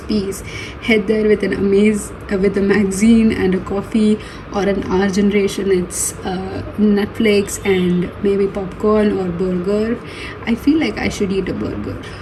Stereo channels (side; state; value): both; identical; correlation 1.00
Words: peace, head there with with a magazine and a coffee, or an our generation it's Netflix and maybe popcorn or burger. I feel like I should eat a burger